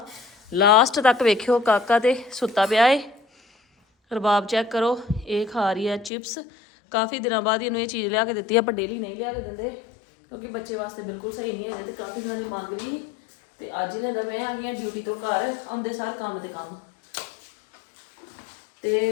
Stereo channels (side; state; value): right; drops out; at 6.1 s